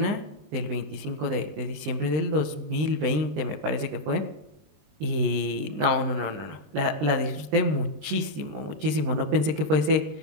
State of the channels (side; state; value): left; late; 20 ms